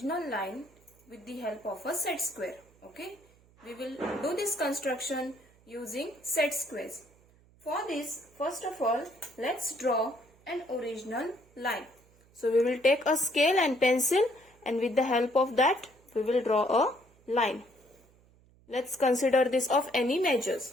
line with the help of a set square. Okay, we will do this construction using set squares. For this, first of all, let's draw an original line. So we will take a scale and pencil, and with the help of that we will draw a line. Let's consider this of any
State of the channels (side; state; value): right; noise; hum, 29 dB below the sound